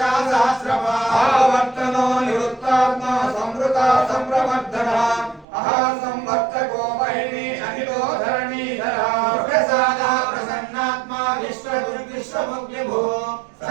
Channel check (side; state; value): left; drops out; at 5.5 s